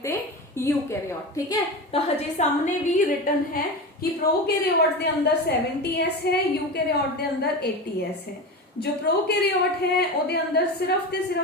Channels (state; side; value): normal; both; correlation 0.25